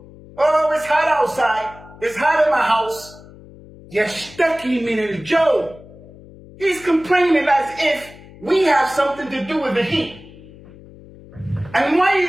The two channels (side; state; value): left; noise; hum, 20 dB below the sound